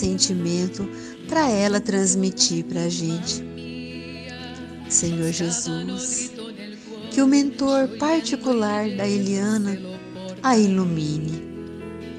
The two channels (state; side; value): identical; both; correlation 1.00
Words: para ela transmitir para a gente. Senhor Jesus, que o mentor particular da Eliana a ilumine.